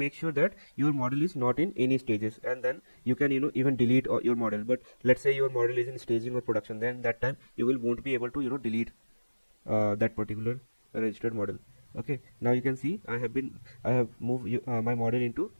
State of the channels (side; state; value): both; inverted; correlation -1.00